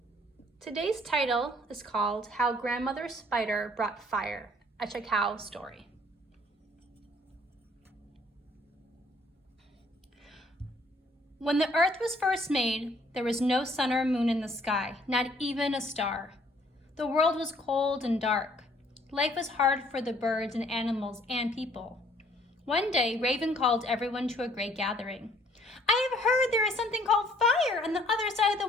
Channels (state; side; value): normal; both; correlation 0.60